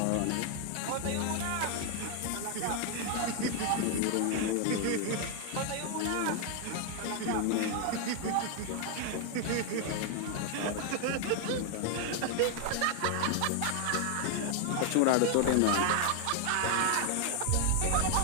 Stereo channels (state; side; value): different; both; correlation 0.00